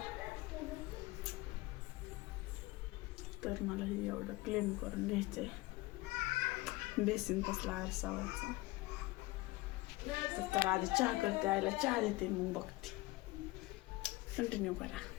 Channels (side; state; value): right; quieter; 20.9 dB